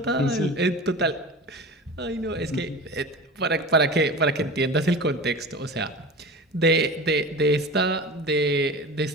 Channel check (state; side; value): normal; both; correlation 0.34